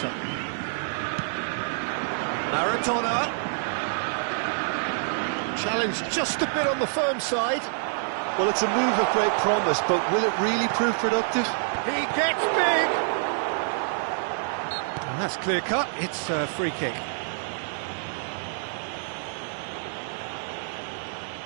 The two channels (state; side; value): silent; left; digital silence